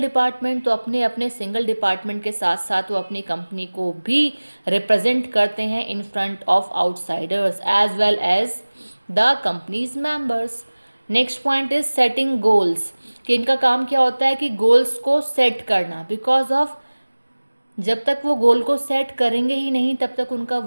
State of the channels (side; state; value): both; inverted; correlation -1.00